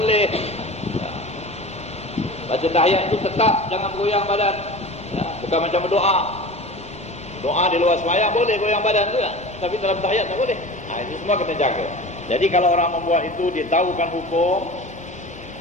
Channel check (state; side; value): normal; both; correlation 0.35